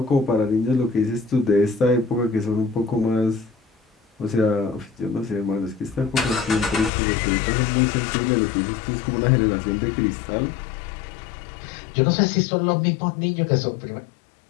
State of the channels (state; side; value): drops out; right; at 6.9 s